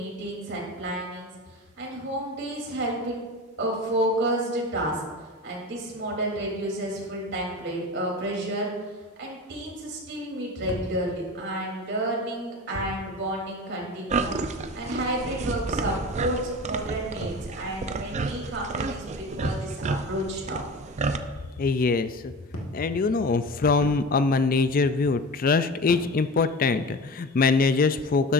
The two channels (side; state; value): both; normal; correlation 0.32